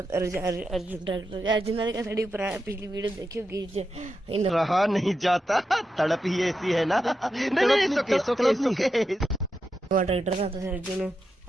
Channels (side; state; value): both; normal; correlation 0.87